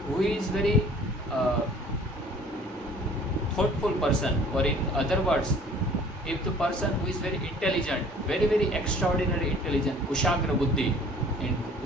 who is very thoughtful person, or in other words, if the person who is very intelligent, very very extraordinary intelligent, kushagra buddhi in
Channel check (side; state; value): both; normal; correlation 0.51